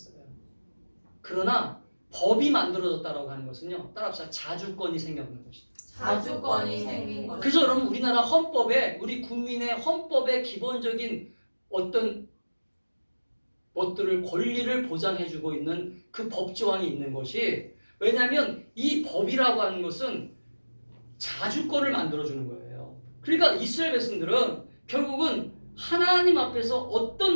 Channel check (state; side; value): inverted; both; correlation -1.00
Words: 그러나 법이 만들어졌다라고 하는 것은요. 따라합시다. 자주권이 생겼는 것이다. 자주권이 생긴 것. 그래서 여러분 우리나라 헌법에 우리 국민의 헌법의 기본적인 어떤 것들을 권리를 보장해주고 있는 그 법조항이 있는 것이 왜냐하면 이 법이라고 하는 것은 자주권을 만들어주는 거예요. 그러니까 이스라엘 백성들은 결국은 하나님 앞에서